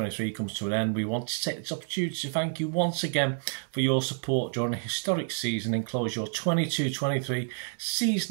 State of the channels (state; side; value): silent; left; digital silence